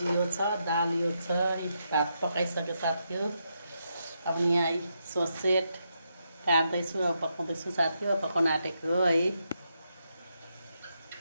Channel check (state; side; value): inverted; both; correlation -0.82